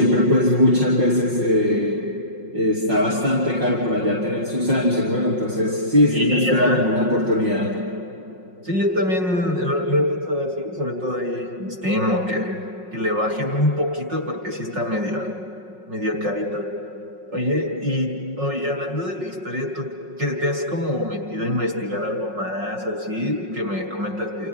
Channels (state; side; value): late; left; 5.5 ms